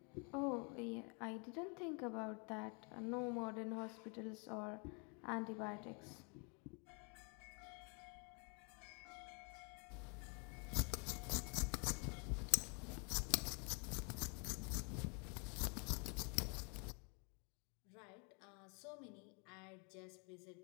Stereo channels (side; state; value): right; quieter; 35.5 dB